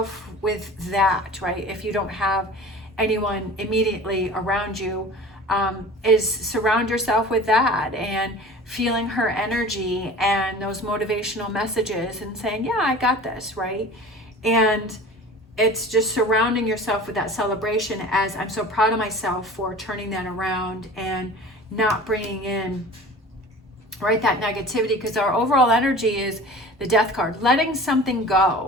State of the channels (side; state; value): both; normal; correlation 0.40